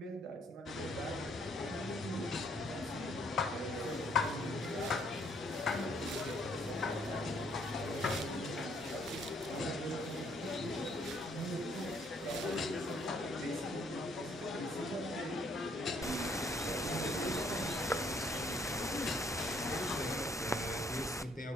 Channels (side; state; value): both; normal; correlation 0.66